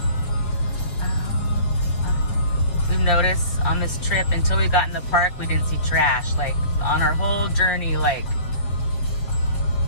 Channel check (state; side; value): late; right; 7.0 ms